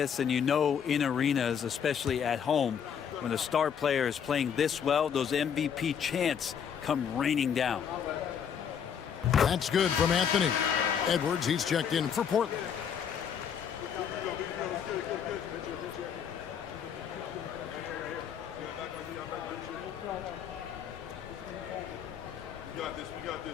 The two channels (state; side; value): quieter; right; 7.8 dB